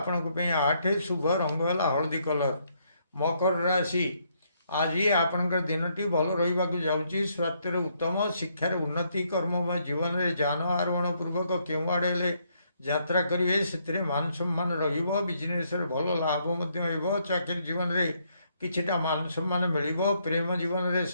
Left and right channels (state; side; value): inverted; both; correlation -0.73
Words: ପାଇଁ 8, ଶୁଭ ରଙ୍ଗ ହେଲା ହଳଦୀ କଲର। ମକର ରାଶି, ଆଜି ଆପଣଙ୍କର ଦିନଟି ଭଲ ରହିବାକୁ ଯାଉଛି। ସ୍ୱାସ୍ଥ୍ୟରେ ଉତ୍ତମ, ଶିକ୍ଷାରେ ଉନ୍ନତି, କର୍ମମୟ ଜୀବନରେ ଯାନ ଆରୋହଣ ପୂର୍ବକ କେଉଁଆଡ଼େ ହେଲେ ଯାତ୍ରା କରିବେ। ସେଥିରେ ମାନ ସମ୍ମାନ ରହିବ। ବିଜନେସରେ ଭଲ ଲାଭ ମଧ୍ୟ ହେବ। ଚାକିରି ଜୀବନରେ କିଛିଟା ମାନ ସମ୍ମାନ ମିଳିବ। ପ୍ରେମ ଜୀବନରେ